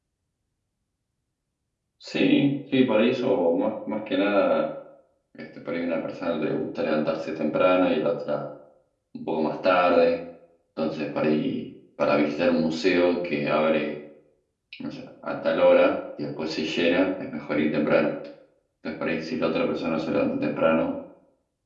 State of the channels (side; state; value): both; identical; correlation 1.00